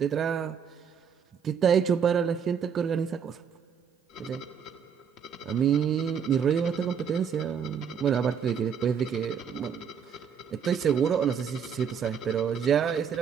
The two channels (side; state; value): left; quieter; 7.4 dB